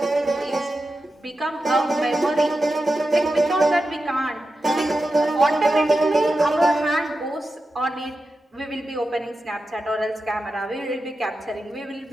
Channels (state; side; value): normal; both; correlation 0.91